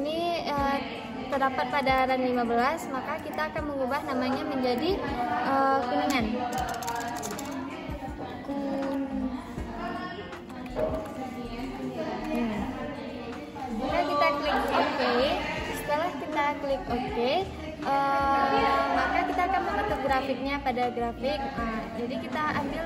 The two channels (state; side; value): identical; both; correlation 1.00